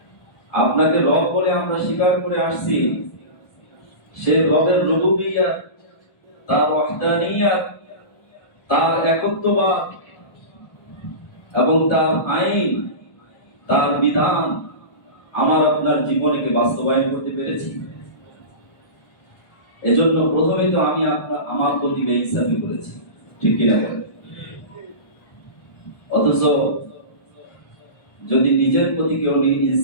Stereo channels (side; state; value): right; late; 1.2 ms